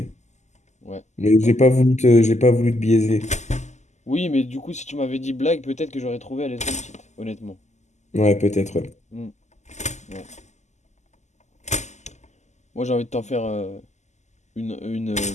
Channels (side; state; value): right; late; 0.33 ms